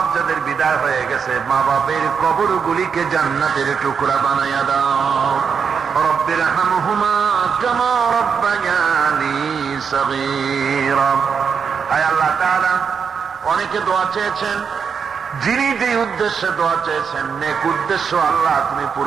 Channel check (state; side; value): quieter; left; 6.4 dB